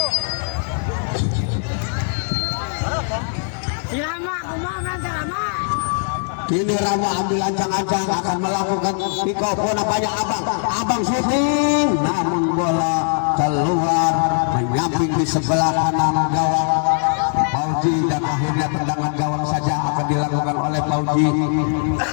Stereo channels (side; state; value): right; silent; 58 dB below the other